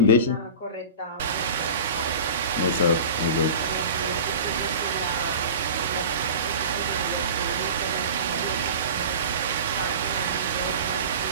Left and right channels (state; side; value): inverted; both; correlation -0.35